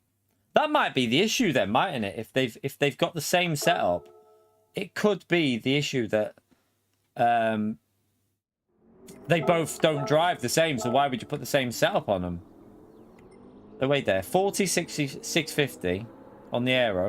That might be the issue then, mightn't it? If they've got the same setup, it could be the issue that they both don't drive the same, so why would you put the same setup on them? So wait there, 40, 60, 650 on the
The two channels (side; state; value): both; identical; correlation 1.00